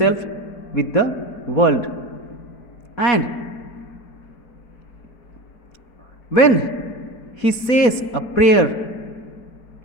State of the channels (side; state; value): right; late; 4.2 ms